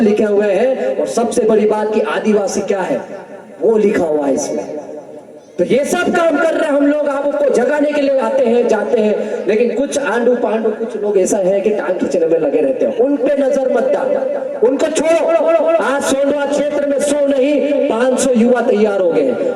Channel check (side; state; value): both; identical; correlation 1.00